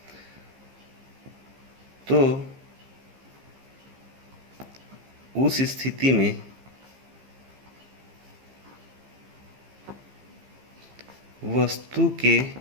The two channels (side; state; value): left; late; 15 ms